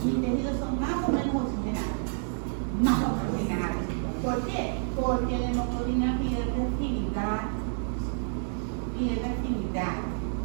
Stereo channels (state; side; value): silent; left; digital silence